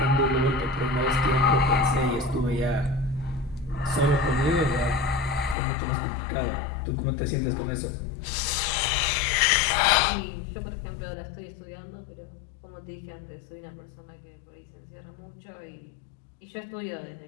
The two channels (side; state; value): right; drops out; at 5.6 s